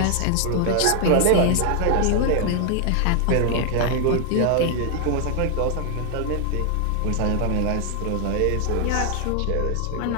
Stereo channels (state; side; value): different; both; correlation 0.00